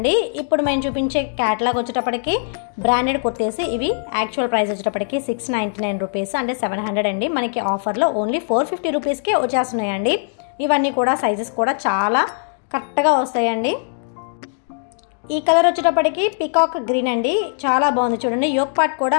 ఇప్పుడు మేము చూపించే క్యాటలాగ్ వచ్చేటప్పటికి బ్రాండెడ్ కుర్తీస్ ఇవి యాక్చువల్ ప్రైస్ వచ్చేటప్పటికి 699 రూపీస్ అంటే 700 అండి. మనకి ఆఫర్లో ఓన్లీ 450 రూపీస్కే వచ్చేస్తున్నాయండి. ఇవన్నీ కూడా సైజెస్ కూడా చాలా కరెక్ట్గా వస్తాయండి. ఈ కలర్ వచ్చేటప్పటికి పికాక్ గ్రీన్ అండి, చాలా బాగుంది చూడండి. యోక్ పార్ట్ కూడా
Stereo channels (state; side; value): silent; right; digital silence